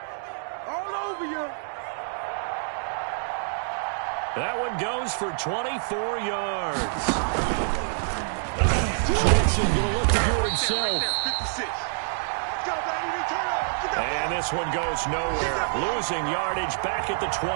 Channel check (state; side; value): silent; left; 60 dB below the other